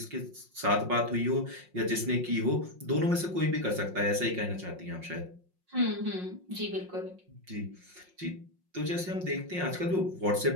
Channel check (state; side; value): late; left; 5.6 ms